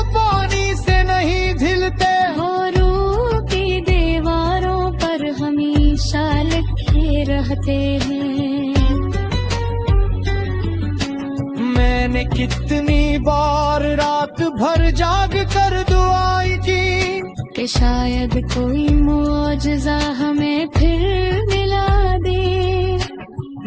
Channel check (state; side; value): identical; both; correlation 1.00